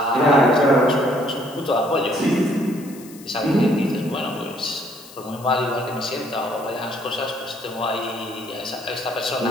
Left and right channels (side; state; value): left; noise; hiss, 20 dB below the sound